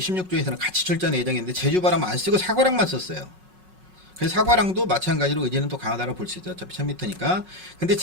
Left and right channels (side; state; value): left; late; 5.4 ms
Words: 같이 출전 예정인데 제주 바람은 안 쓰고 사과랑만 썼어요. 그래서 사과랑도 마찬가지로 의지는 또 강하다고 볼 수 있죠. 어차피 1000m니까. 근데